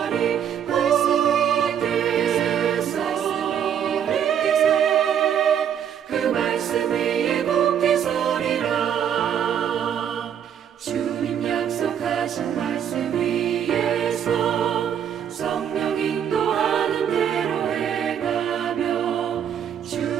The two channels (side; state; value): left; quieter; 8.9 dB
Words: 굳게 서리 그 말씀 위에 굳게 서리라. 주님 약속하신 말씀 위에서 성령 인도하는 대로 해가며